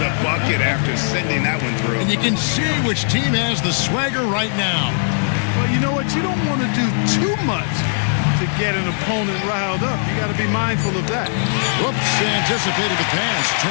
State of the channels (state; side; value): silent; right; digital silence